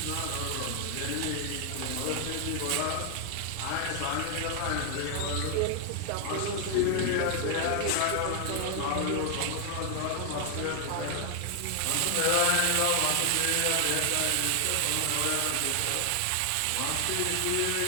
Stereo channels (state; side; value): different; both; correlation 0.00